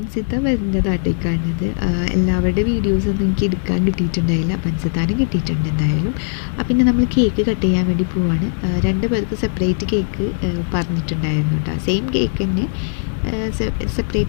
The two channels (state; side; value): silent; right; digital silence